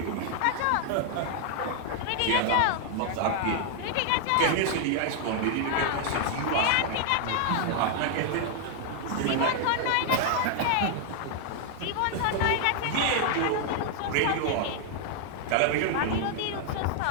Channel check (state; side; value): different; both; correlation 0.00